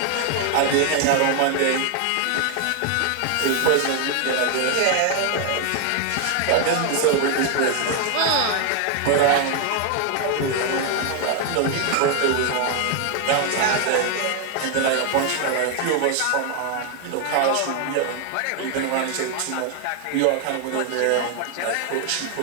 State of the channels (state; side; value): different; both; correlation 0.00